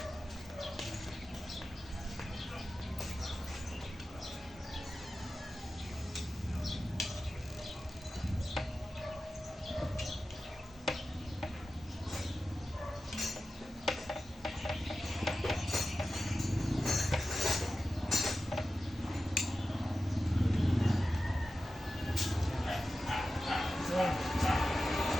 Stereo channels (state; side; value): normal; both; correlation 0.93